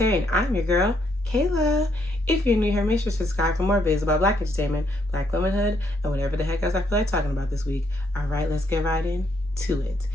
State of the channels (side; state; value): both; normal; correlation 0.73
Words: and I'm your girl, Kayla. If you're new here, make sure to subscribe for more videos about Black entertainment, Black womanhood, and whatever the heck else I feel like talking about this week. All right, let's get right into it.